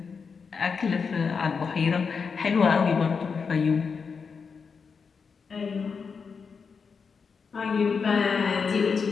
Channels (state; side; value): quieter; right; 5.6 dB